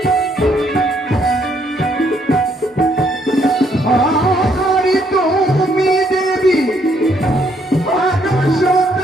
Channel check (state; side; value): normal; both; correlation 0.70